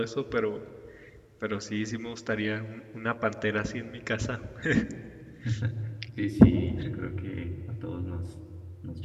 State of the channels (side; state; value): both; identical; correlation 1.00